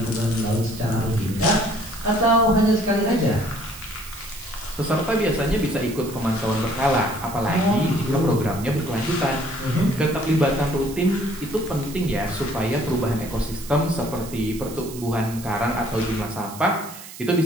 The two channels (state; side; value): noise; right; hiss, 15 dB below the sound